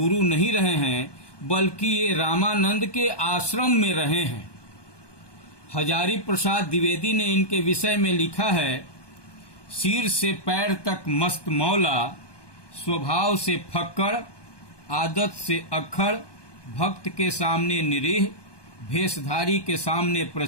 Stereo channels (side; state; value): right; late; 1.2 ms